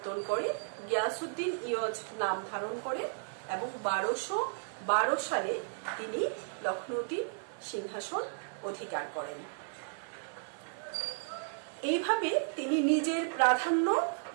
করে গিয়াসউদ্দিন ইয়োজ নাম ধারণ করে এবং 1212 সালে তিনি লখনৌতির সিংহাসন অধিকার করেন। এইভাবে তিনি নিজের প্রাধান্য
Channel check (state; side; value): silent; left; 55 dB below the other